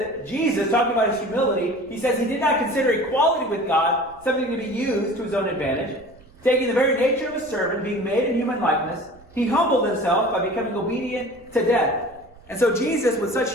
Jesus, talking about His humility, He says He did not consider equality with God something to be used to His own advantage. Taking the very nature of a servant, being made in human likeness, He humbled Himself by becoming obedient to death. And so Jesus, with such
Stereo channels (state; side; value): noise; right; rumble, 26 dB below the sound